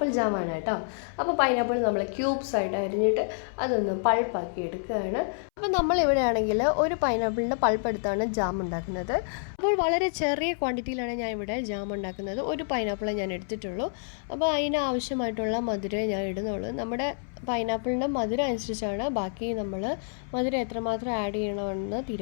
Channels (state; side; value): silent; right; 59 dB below the other